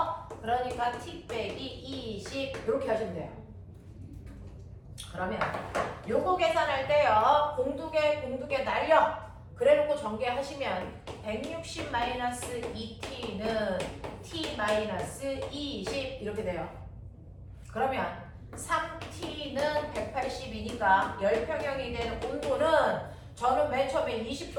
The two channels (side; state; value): both; identical; correlation 1.00